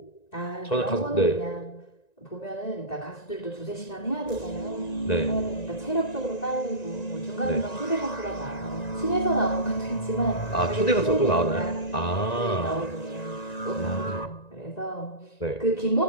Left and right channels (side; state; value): right; late; 1.9 ms